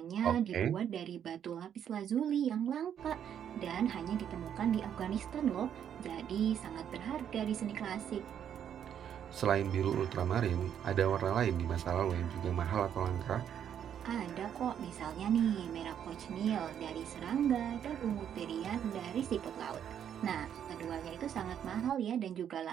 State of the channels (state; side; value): quieter; left; 9.2 dB